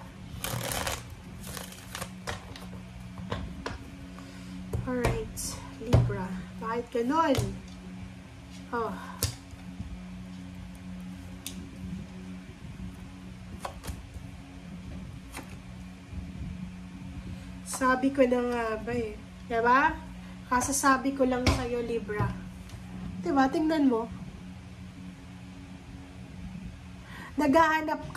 Alright, Libra. Bakit ganon? Oh. Sabi ko na nga ba Diba? Kasasabi ko lang sa'yo, Libra. Diba? Tingnan mo. Naghahanap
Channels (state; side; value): identical; both; correlation 1.00